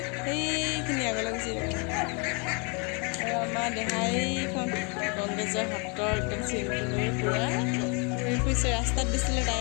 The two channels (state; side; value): quieter; right; 33.7 dB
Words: সেইখিনি আগলৈ গুচি যাব আৰু আমাৰ দেহাইখন কংগ্ৰেছৰ হাতৰ একদম চিনটো লৈ পূৰা ঘূৰি ফুৰিছে ৰাস্তাত দিছিলে তাই